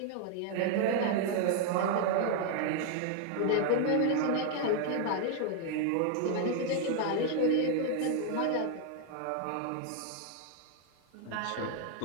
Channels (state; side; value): different; both; correlation 0.00